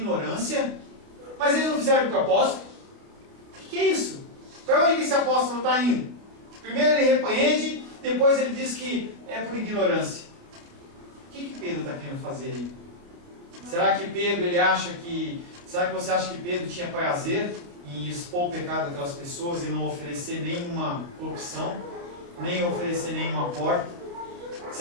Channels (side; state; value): left; late; 29 ms